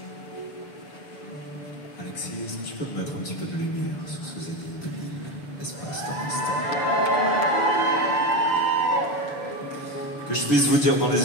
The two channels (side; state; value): right; late; 6.9 ms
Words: Alexis, est-ce que tu peux me mettre un petit peu de lumière sur ce zénith de Lille, espace dans l'instant? Que je puisse vous dire dans